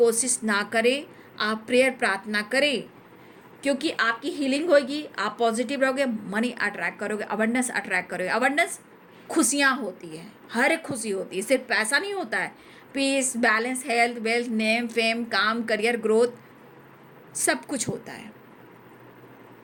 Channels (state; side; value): identical; both; correlation 1.00